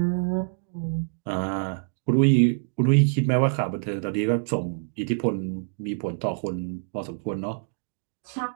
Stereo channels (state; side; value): silent; left; digital silence